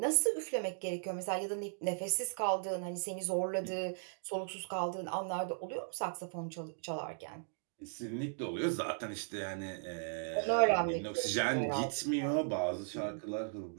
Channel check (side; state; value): left; silent; digital silence